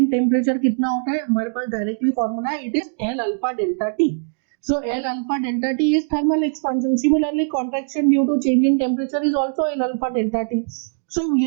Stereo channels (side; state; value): left; silent; digital silence